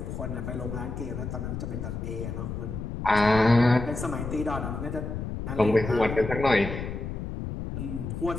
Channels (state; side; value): noise; left; rumble, 5 dB below the sound